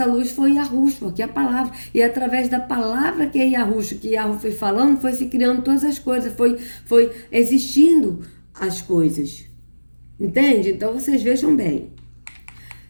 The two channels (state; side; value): inverted; both; correlation -1.00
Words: luz foi Yahushua, que é a palavra. E através da palavra que é Yahushua, que Yahweh foi falando, foi se criando todas as coisas, foi existindo as coisas. Entende? Então, vocês vejam bem.